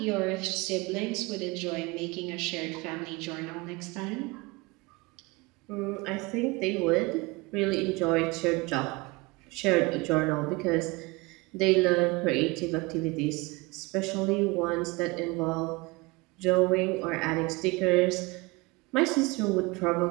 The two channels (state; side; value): quieter; left; 24.8 dB